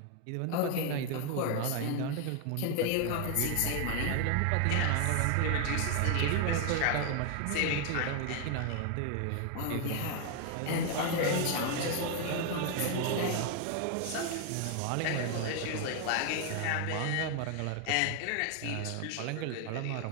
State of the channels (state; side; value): different; both; correlation 0.01